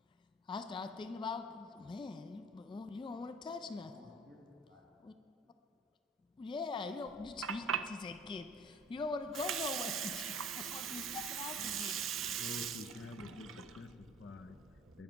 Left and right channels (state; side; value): normal; both; correlation 0.47